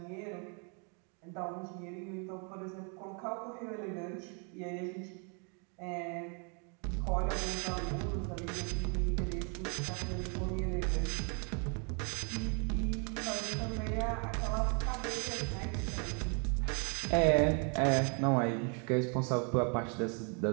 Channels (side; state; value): left; quieter; 37.6 dB